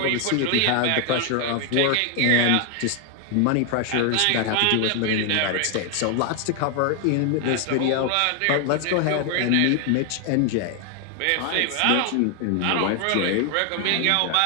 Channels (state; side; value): different; both; correlation 0.00